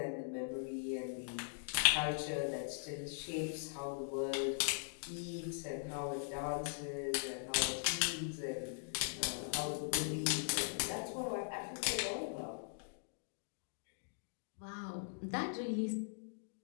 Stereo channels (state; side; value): silent; right; digital silence